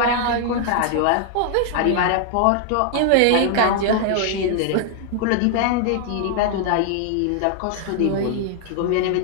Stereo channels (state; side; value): different; both; correlation 0.00